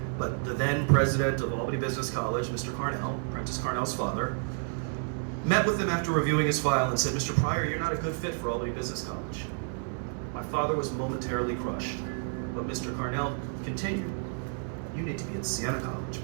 But the then president of Albany Business College, Mr. Carnell, Prentice Carnell's father, met with him after reviewing his file and said, "Mr. Pryor, you're not a good fit for Albany Business College." My father was momentarily crushed, but Mr. Carnell continued, "You need to be at Siena College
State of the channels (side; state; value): left; silent; 58 dB below the other